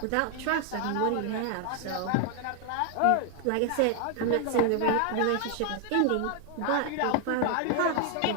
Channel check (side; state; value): both; different; correlation 0.00